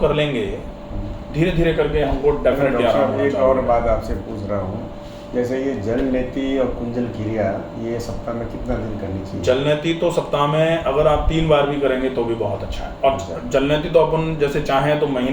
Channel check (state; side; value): identical; both; correlation 1.00